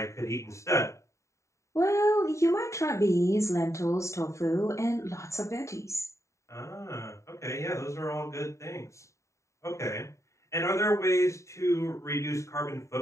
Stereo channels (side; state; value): right; late; 0.14 ms